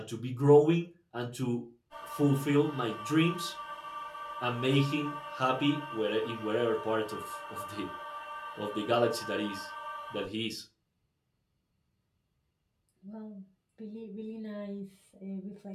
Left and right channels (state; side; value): identical; both; correlation 1.00